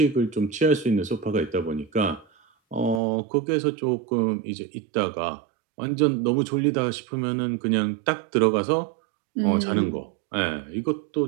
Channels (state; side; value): drops out; left; at 3.0 s